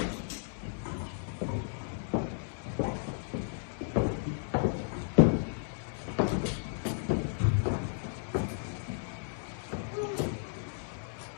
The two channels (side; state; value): right; silent; digital silence